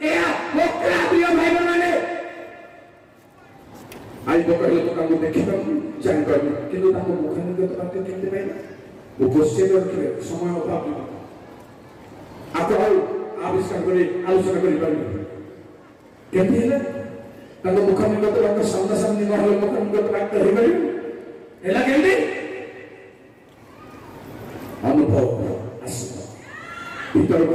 ଏହା ପକ୍କା ପ୍ରିୟ ଭାଇ ମାନେ। ଆଜି ପକାଇଲେ ତ ତାଙ୍କୁ ଦେଖିପାରୁନି, ଜାଣିପାରୁନି, କିନ୍ତୁ ତାଙ୍କୁ ମୁଖାନିଗତ ବାକ୍ୟ କେମିତି ପାଇଲା? ଉପସ୍ଥିତ ରଖିଲେ ସମୟ ଅଭାବ ଆପଣ ଆଉ ଆବିଷ୍କାର କରି ଆଲୋଚନା କରିପାରିବେ କେମିତି ହେଲେ? ତାଙ୍କ ମୁଖାନିଗତ ବାକ୍ୟ ସାମ୍ନାସାମ୍ନି ନହେଲେ ମୁଖାନିଗତ ବାକ୍ୟ ହେଇପାରିବ? ହେଲା କେମିତି? ଅନୁଭବ ଭିତରକୁ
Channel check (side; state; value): both; identical; correlation 1.00